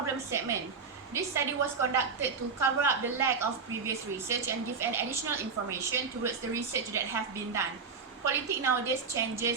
statement, this study was conducted to cover up the lack of previous research and give an additional information towards the research that have been done. Politics nowadays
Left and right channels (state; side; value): quieter; left; 5.2 dB